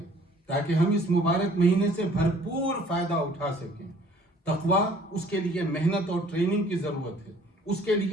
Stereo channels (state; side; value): normal; both; correlation 0.56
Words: تاکہ ہم اس مبارک مہینے سے بھرپور فائدہ اٹھا سکیں۔ تقویٰ، اس کے لیے محنت اور ٹریننگ کی ضرورت ہے، اس کے